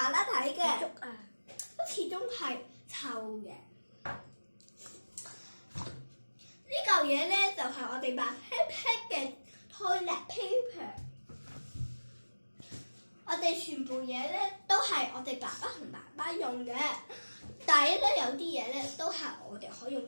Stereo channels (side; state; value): both; inverted; correlation -1.00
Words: 啦睇嘅，竹啊，都始終係臭嘅。呢嚿嘢咧就係我哋白屁屁嘅 toilet paper。我哋全部嘢咧都係我哋爸爸同媽媽用嘅，但係咧有啲嘢咧都係我哋可以用